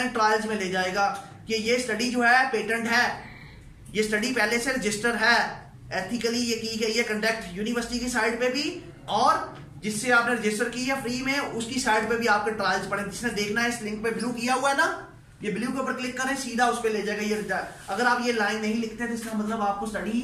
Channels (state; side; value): identical; both; correlation 1.00